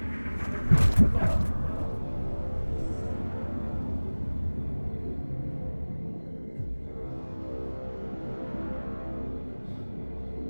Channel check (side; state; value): both; inverted; correlation -1.00